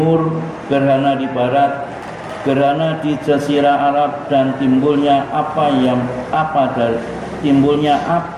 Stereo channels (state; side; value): identical; both; correlation 1.00